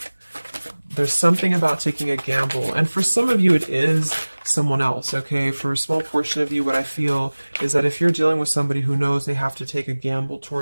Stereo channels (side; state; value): both; inverted; correlation -1.00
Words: There's something about taking a gamble. And for some of you, it is someone else, okay? For a small portion of you, what I feel is that if you're dealing with somebody who knows they have to take a gamble